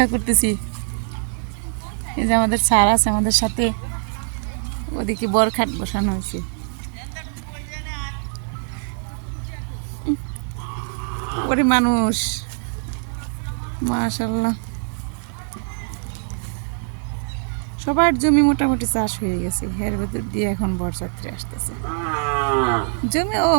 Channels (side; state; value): left; silent; 56 dB below the other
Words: করতেছি, এই যে আমাদের স্যার আছে আমাদের সাথে, ওদিকে বরখাট বসানো হয়েছে। ওরে মানুষ, মাশাআল্লাহ, সবার জমি মোটামুটি চাষ হয়ে গেছে। এর ভেতর দিয়ে এখন বরযাত্রী আসতেছে। জমি ও